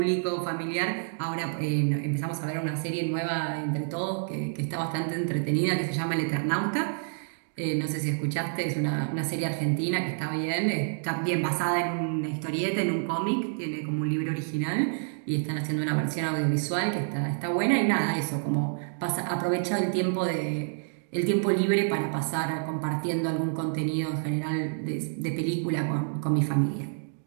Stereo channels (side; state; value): left; silent; digital silence